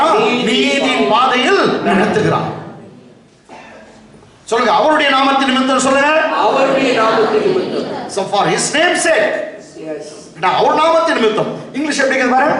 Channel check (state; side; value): identical; both; correlation 1.00